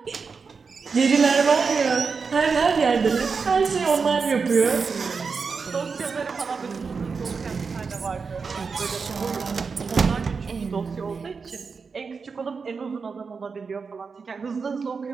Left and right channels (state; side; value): quieter; left; 5.1 dB